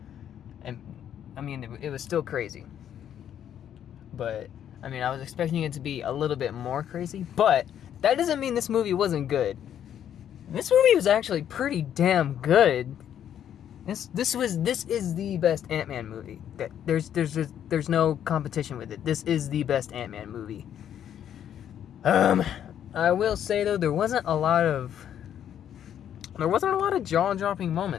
And, I mean, it was still crazy. But, I mean, I was expecting it to be a little bit more crazy. But, that doesn't mean this movie wasn't good. This movie was actually pretty damn good. This is the best Ant-Man movie. There's no competition with it. This is the best Ant-Man movie. I will say though, there wasn't a lot of jaw-dropping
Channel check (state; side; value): quieter; right; 9.9 dB